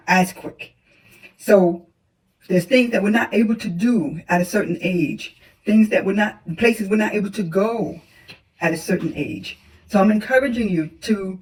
as quick. So there's things that we're not able to do at a certain age, places we're not able to go at a certain age. So I'm encouraging you to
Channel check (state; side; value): identical; both; correlation 1.00